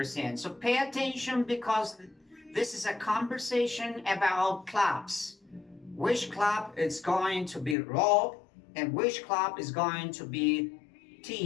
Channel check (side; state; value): right; drops out; at 7.8 s